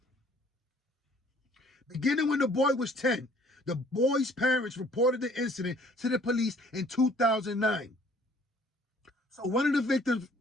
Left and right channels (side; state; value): both; normal; correlation 0.57